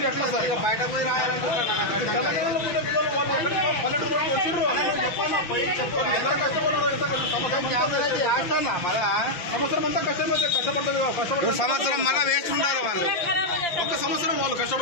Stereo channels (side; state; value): right; late; 5.8 ms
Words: ఎట్లా సార్ బయట పోయి సంవత్సరం మళ్ళా వేస్ట్ ఉండాలి వాళ్ళు. ఒక్క సంవత్సరం వాళ్ళు